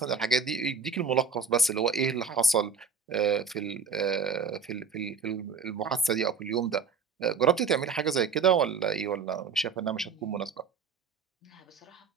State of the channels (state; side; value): quieter; left; 5.5 dB